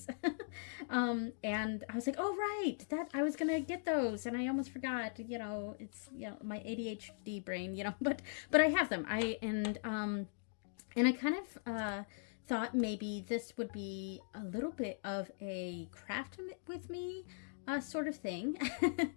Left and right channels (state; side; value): silent; right; digital silence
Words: And I was like, oh, right, that I was going to get those. And I almost forgot, it's, my ADHD brain, but I have them. And I kind of, thought maybe this would be a little bit of a craft with me sort of thing.